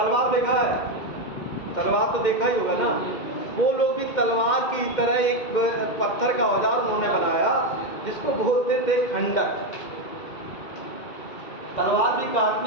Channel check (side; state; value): right; late; 2.1 ms